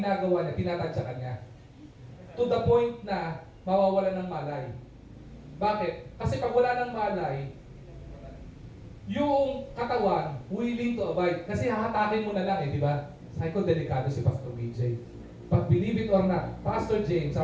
niya, tinatadyakan niya. To the point na mawawala ng malay. Bakit? Kasi pag wala ng malay, yung katawan willing to abide. Kasi hahatakin mo na lang eh, di ba? Sabi ko, delikado si Pastor BJ. But believe it or not, Pastor James,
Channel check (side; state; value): both; identical; correlation 1.00